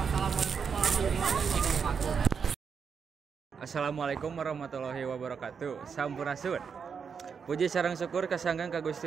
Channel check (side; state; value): left; quieter; 6.3 dB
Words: Assalamualaikum warahmatullahi wabarakatuh. Sampurasun. Puji sareng syukur kasanggang ka